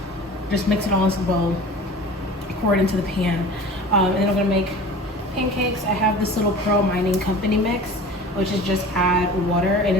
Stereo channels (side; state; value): both; normal; correlation 0.40